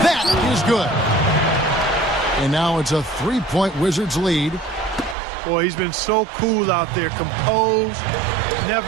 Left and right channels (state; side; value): drops out; left; at 5.2 s